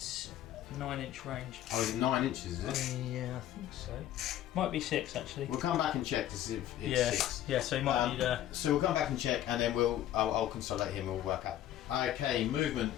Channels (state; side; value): quieter; right; 12.4 dB